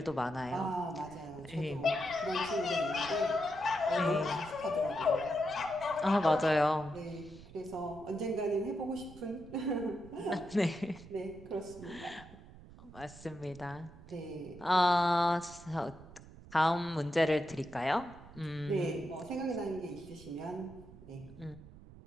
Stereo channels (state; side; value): noise; right; rumble, 18 dB below the sound